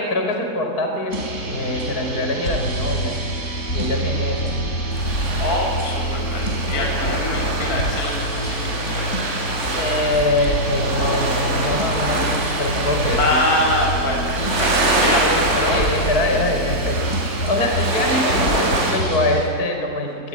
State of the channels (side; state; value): right; late; 3.5 ms